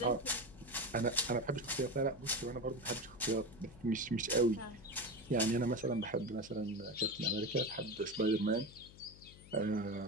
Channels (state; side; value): noise; left; hum, 20 dB below the sound